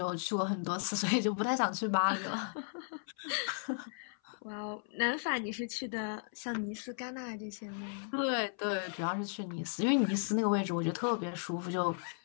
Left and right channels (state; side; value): silent; right; 54 dB below the other